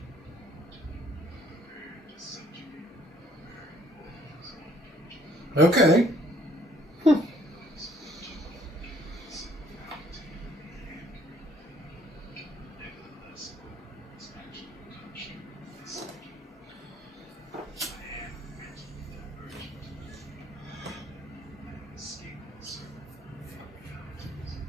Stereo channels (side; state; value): both; normal; correlation 0.63